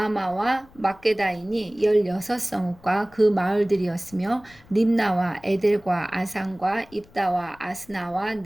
막게다이니 16성읍과 그 마을들이었으며 림나와 에델과 아산과 입다와 아스나와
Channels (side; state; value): left; noise; rumble, 26 dB below the sound